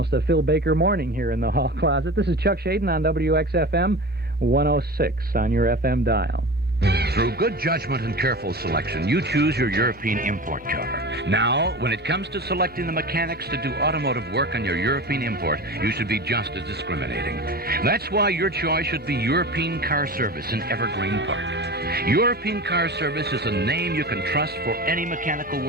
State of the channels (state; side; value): normal; both; correlation 0.32